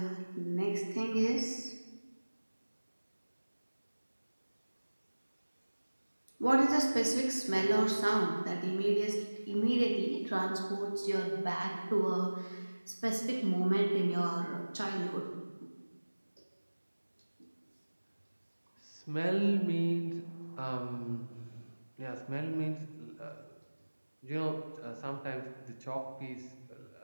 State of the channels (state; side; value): inverted; both; correlation -1.00